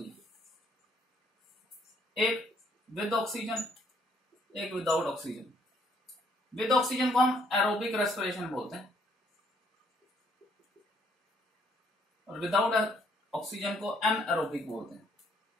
है, एक विद ऑक्सीजन, एक विदाउट ऑक्सीजन। विद ऑक्सीजन को हम एरोबिक रेस्पिरेशन बोलते हैं, और विदाउट ऑक्सीजन को एनएरोबिक बोलते हैं।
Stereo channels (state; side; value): normal; both; correlation 0.66